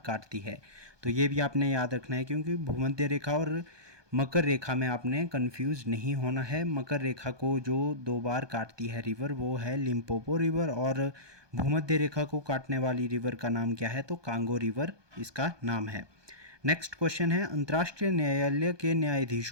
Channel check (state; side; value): late; left; 1.2 ms